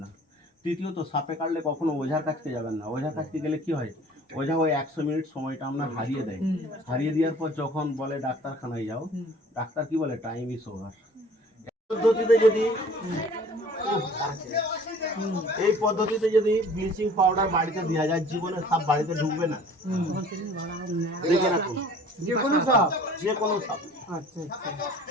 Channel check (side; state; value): both; normal; correlation 0.49